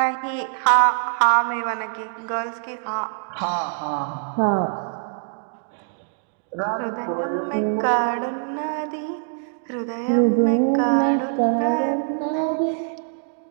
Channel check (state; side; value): silent; left; digital silence